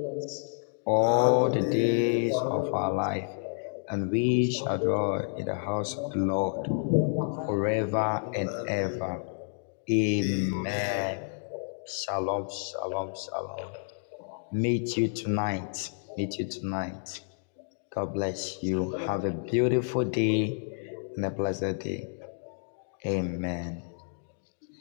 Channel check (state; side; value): silent; right; digital silence